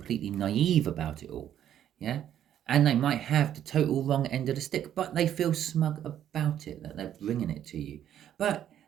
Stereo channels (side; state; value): left; quieter; 10.6 dB